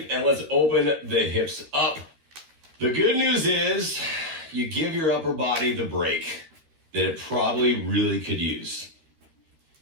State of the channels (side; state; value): left; late; 13 ms